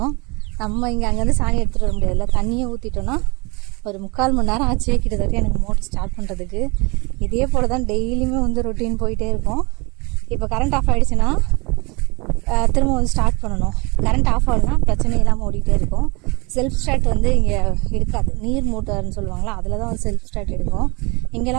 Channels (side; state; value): left; quieter; 27.8 dB